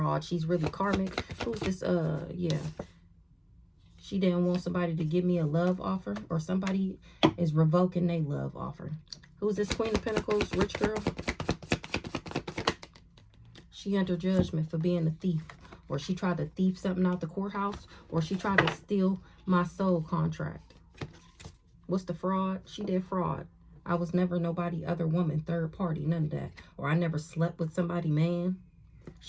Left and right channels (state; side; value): identical; both; correlation 1.00